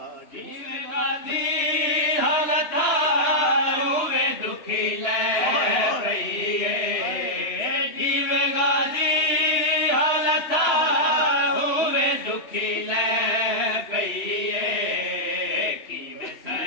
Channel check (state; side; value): late; right; 3.0 ms